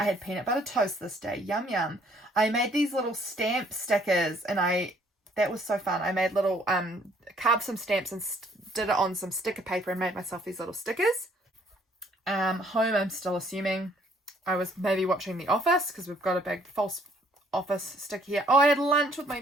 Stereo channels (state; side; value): normal; both; correlation 0.63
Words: had peanut butter toast this day. Yum, yum. I made these little stamp stickers, and that was so fun. I made little, carved some stamps and did it on some sticker paper and made myself these little stickers. Home, I'm still assuming I was maybe watching The Office because we've got a big false office sticker here. Oh, I had lunch with